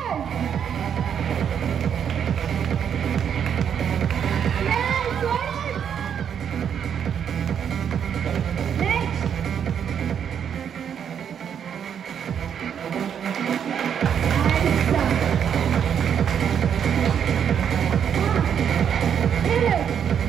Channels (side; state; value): left; quieter; 8.2 dB